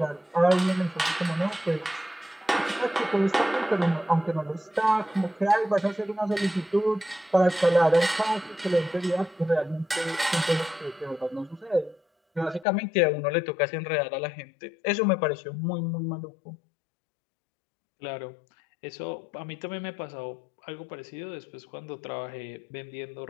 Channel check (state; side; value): drops out; right; at 12.7 s